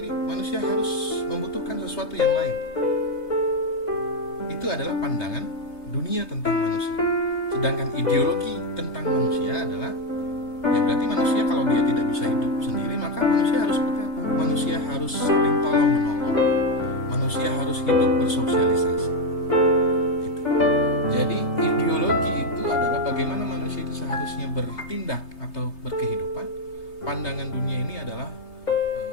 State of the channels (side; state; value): right; late; 3.3 ms